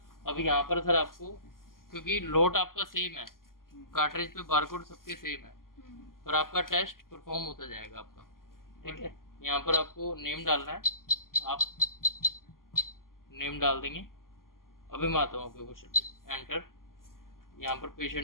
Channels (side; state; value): right; late; 0.91 ms